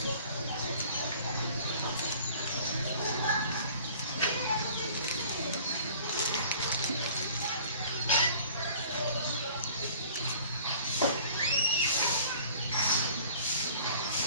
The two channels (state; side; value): inverted; both; correlation -0.50